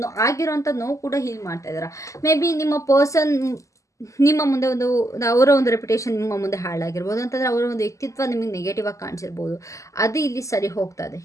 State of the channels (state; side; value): late; right; 0.16 ms